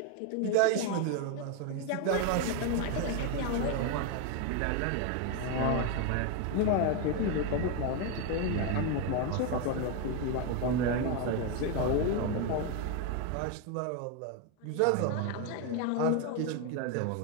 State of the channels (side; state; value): both; different; correlation 0.02